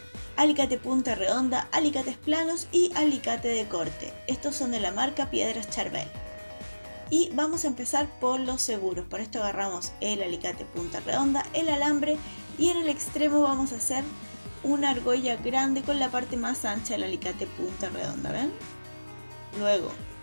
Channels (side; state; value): both; inverted; correlation -1.00